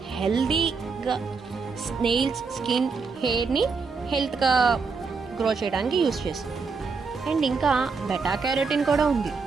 హెల్దీగా నెయిల్స్, స్కిన్, హెయిర్ని హెల్త్గా గ్రో చేయడానికి యూజ్ చేస్తుంది. అండ్ ఇంకా బెటా క్యారోటిన్ కూడా ఉంది.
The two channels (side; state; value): left; quieter; 4.8 dB